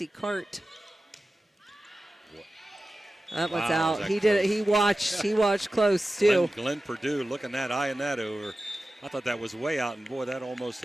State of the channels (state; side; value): normal; both; correlation 0.94